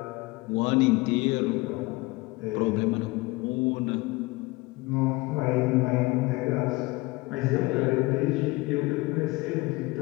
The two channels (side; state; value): right; quieter; 22.7 dB